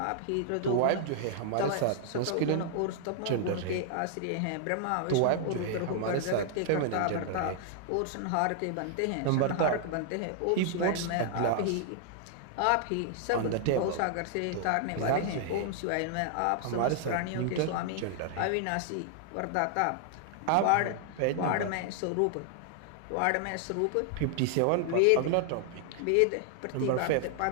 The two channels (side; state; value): both; different; correlation 0.00